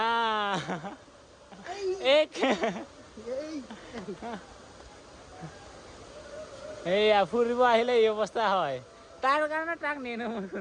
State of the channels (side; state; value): both; identical; correlation 1.00